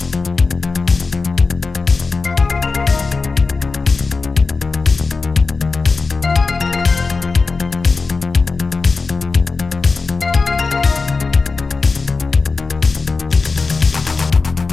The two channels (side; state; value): right; quieter; 4.2 dB